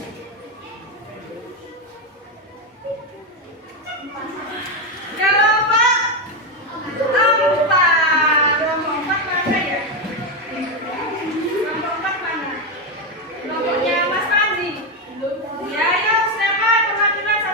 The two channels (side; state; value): both; normal; correlation 0.08